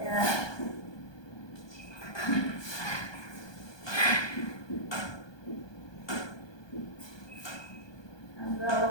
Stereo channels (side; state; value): right; late; 1.2 ms